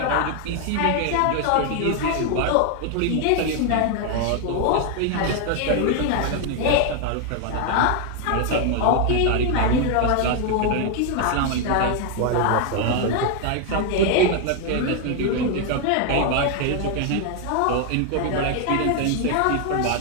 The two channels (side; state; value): both; different; correlation 0.00